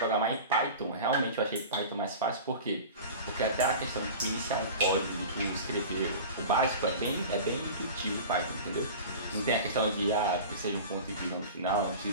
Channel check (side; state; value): both; inverted; correlation -0.35